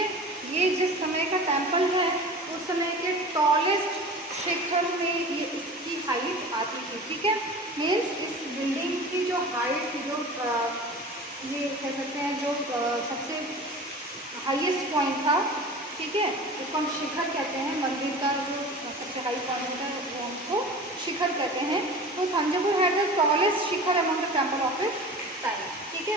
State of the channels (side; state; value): both; normal; correlation 0.36